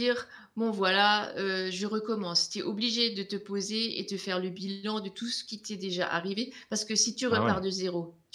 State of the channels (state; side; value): identical; both; correlation 1.00